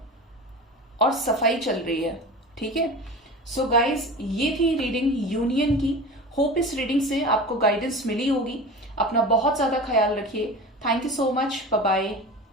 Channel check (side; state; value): both; normal; correlation 0.33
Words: और सफाई चल रही है, ठीक है। सो गाइज, ये थी रीडिंग यूनियन की। होप इस रीडिंग से आपको गाइडेंस मिली होगी। अपना बहुत ज्यादा ख्याल रखिए। Thank you so much, bye bye,